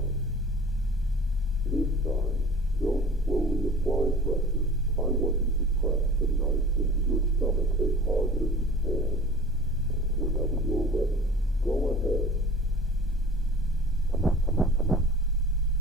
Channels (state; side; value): normal; both; correlation 0.43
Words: This time, don't slowly apply pressure. I want you to press the knife into your stomach as hard as you can. Whenever you're ready, go ahead.